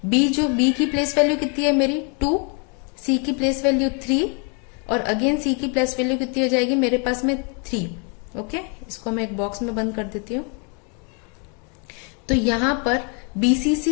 बी की प्लेस वैल्यू कितनी है मेरी 2, सी की प्लेस वैल्यू 3 और अगेन सी की प्लेस वैल्यू कितनी हो जाएगी मेरे पास में 3। ओके, इसको मैं एक बॉक्स में बंद कर देती हूँ। तो यहां पर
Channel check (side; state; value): right; quieter; 36.5 dB